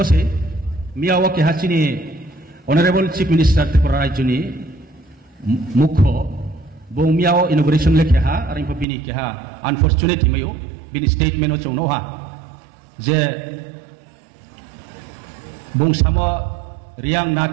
मियाओ के हाचिनी ऑनरेबल चीफ मिनिस्टर त्रिपुरा राज्यनि मुख्य बो मियाओ इनॉग्रेशन लेखे हा और इनको बिनी के हा अनफॉर्चुनेट हिमयो बिनी स्टेटमेंट चौनो हा जे बुंसामो रियांग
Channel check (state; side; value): drops out; left; at 8.8 s